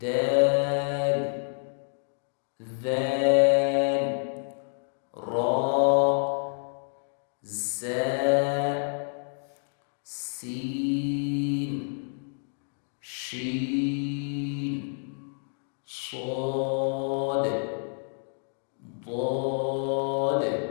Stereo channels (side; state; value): right; silent; 59 dB below the other